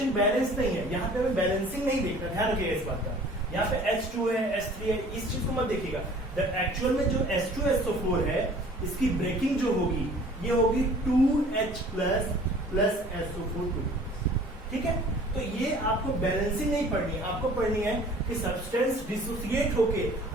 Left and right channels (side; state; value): both; normal; correlation 0.50